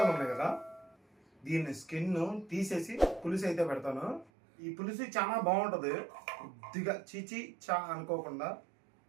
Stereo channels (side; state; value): left; drops out; at 4.3 s